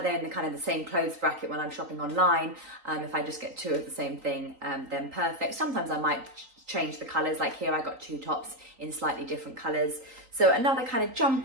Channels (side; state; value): left; late; 3.8 ms